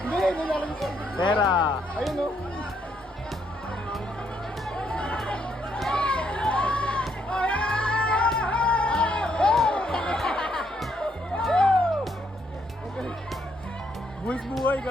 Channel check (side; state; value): both; normal; correlation 0.73